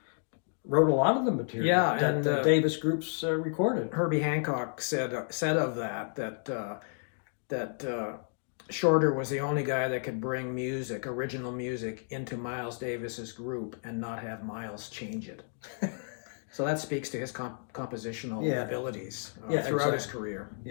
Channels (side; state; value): right; silent; digital silence